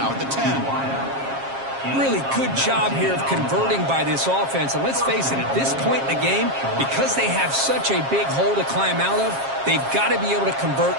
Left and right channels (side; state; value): left; late; 7.4 ms